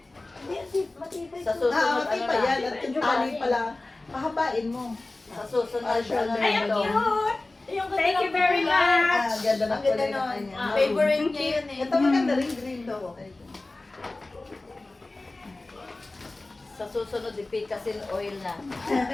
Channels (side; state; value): right; quieter; 3.0 dB